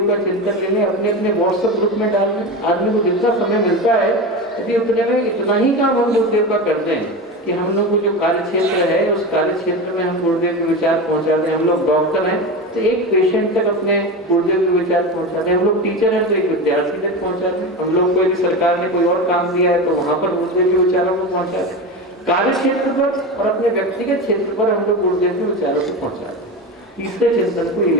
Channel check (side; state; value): both; normal; correlation 0.23